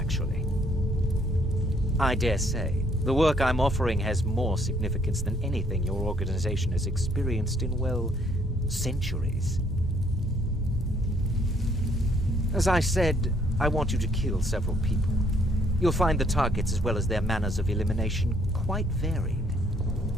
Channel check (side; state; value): both; normal; correlation 0.66